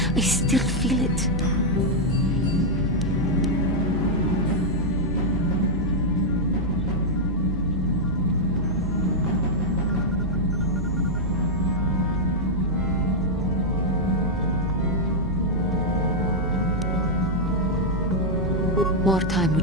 I still feel it. More time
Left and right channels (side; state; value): both; normal; correlation -0.03